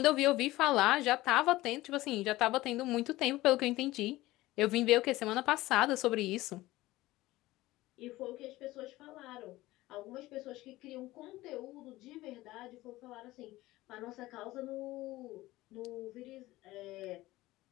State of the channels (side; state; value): right; quieter; 17.9 dB